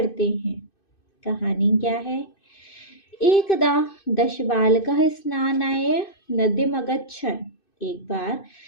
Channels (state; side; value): late; right; 2.6 ms